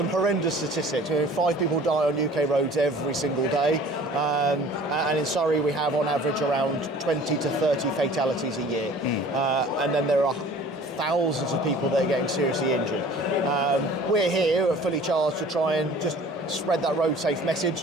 horrendous statistics. 5 people die on UK roads every single day, and in Surrey we have on average around 20 to 30 fatalities a year. And then there are thousands of people that are getting seriously injured. We're here at Fully Charged to try and just spread that road safe message,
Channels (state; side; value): normal; both; correlation 0.47